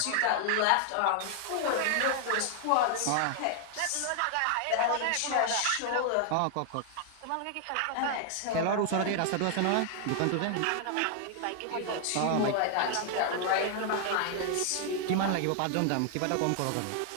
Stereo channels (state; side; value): different; both; correlation 0.00